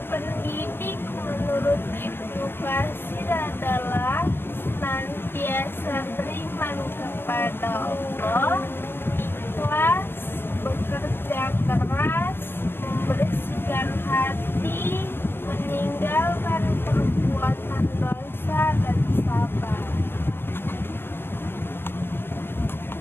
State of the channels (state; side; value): late; right; 0.11 ms